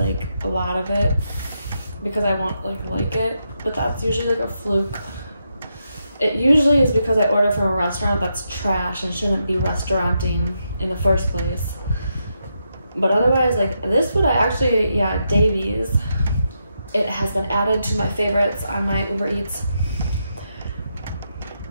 a lot of it because I won't like it, but that's usually like a fluke. It usually is because I order from a restaurant that's trash and shouldn't be restauranting in the first place. But otherwise, like this food I actually, yeah, Davies, it has been added to my favorites on my Uber Eats.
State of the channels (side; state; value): both; inverted; correlation -0.83